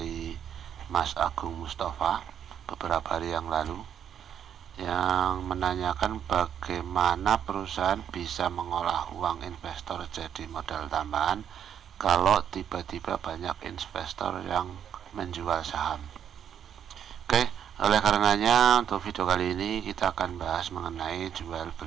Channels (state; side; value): quieter; left; 9.0 dB